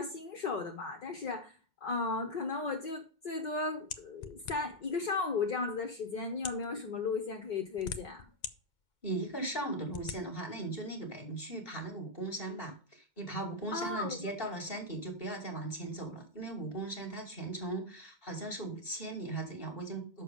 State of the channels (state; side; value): late; right; 2.2 ms